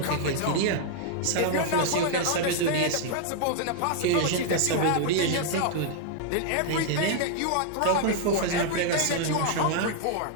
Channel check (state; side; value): different; both; correlation 0.00